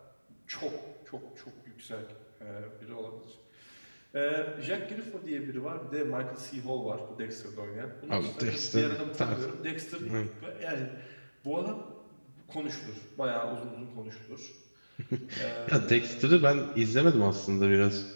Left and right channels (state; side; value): inverted; both; correlation -1.00